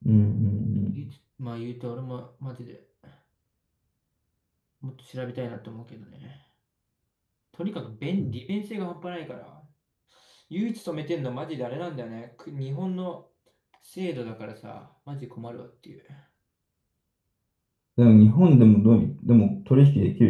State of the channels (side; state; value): both; identical; correlation 1.00